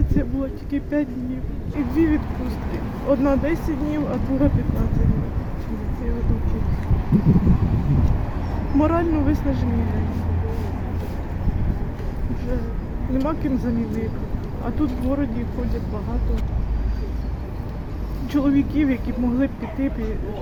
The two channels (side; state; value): both; identical; correlation 1.00